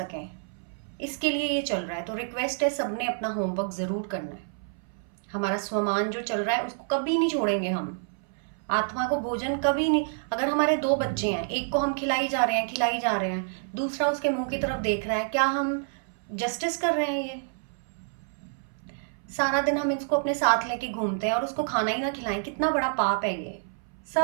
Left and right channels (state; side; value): silent; left; 58 dB below the other